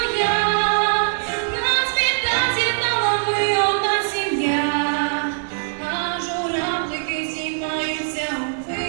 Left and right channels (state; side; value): silent; left; 64 dB below the other